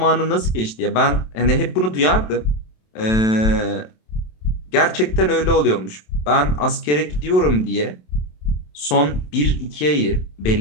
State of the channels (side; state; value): right; late; 27 ms